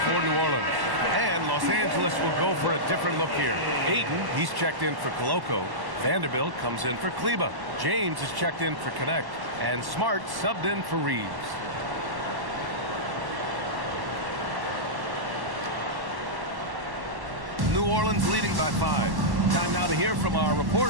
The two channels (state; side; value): late; left; 1.1 ms